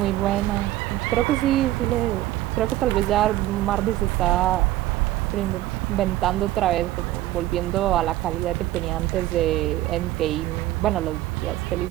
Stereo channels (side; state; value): left; quieter; 15.4 dB